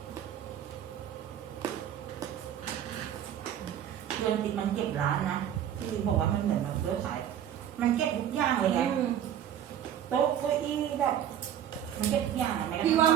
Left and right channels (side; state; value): left; quieter; 10.1 dB